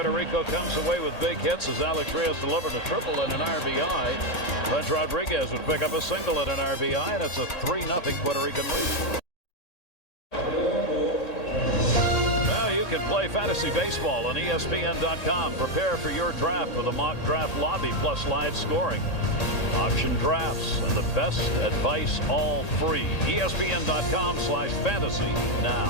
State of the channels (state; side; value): late; right; 1.8 ms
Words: Rico comes away with big hits as Alex Reyes delivered a triple and an RBI. French Rodriguez would pick up a single and an RBI, and it's a 3-0 Puerto Rican lead. Now you can play fantasy baseball on ESPN.com. Prepare for your draft with a mock draft lobby plus live scoring. Auction drafts and the best advice all free. ESPN.com/fantasy